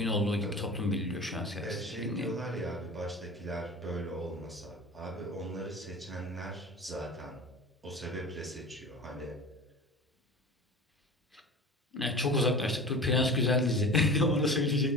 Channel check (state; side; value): normal; both; correlation 0.36